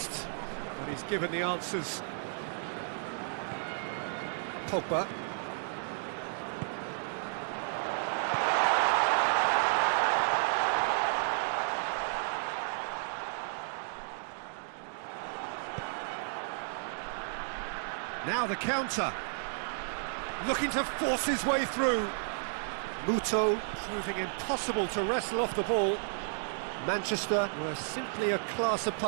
but he's given the answers. Pogba. Now the counter. Looking to force his way through. Muto proving impossible to wrestle off the ball. Manchester were simply a class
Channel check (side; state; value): left; silent; digital silence